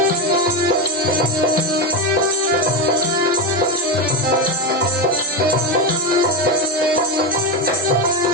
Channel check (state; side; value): normal; both; correlation 0.12